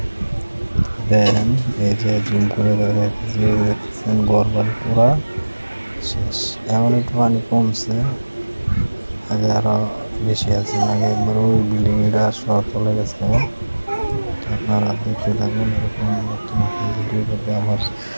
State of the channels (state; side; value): inverted; both; correlation -1.00